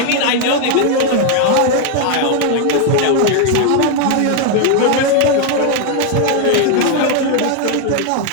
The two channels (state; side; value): different; both; correlation 0.01